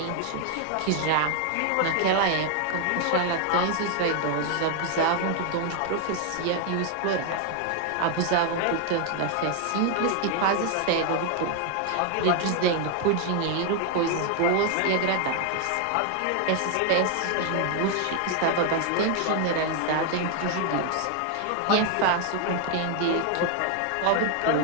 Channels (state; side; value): different; both; correlation 0.00